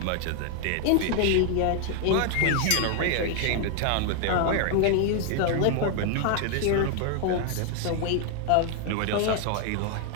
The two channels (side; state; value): both; different; correlation 0.00